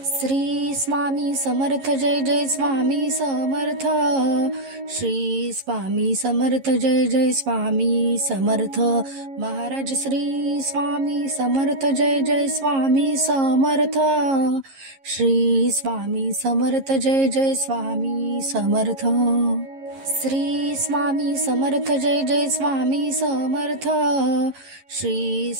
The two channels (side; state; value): left; late; 11 ms